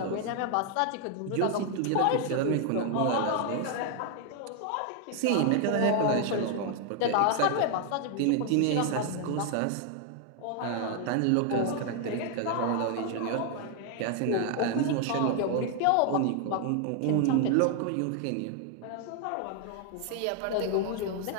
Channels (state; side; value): different; both; correlation 0.00